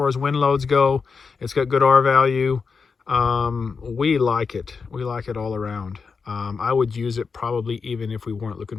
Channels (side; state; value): right; quieter; 5.2 dB